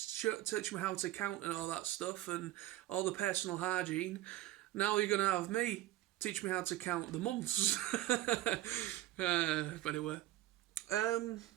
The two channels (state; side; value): quieter; left; 15.4 dB